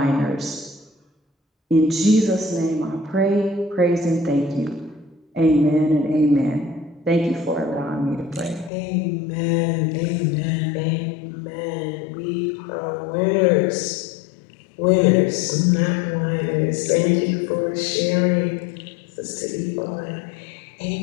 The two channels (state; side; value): drops out; right; at 8.7 s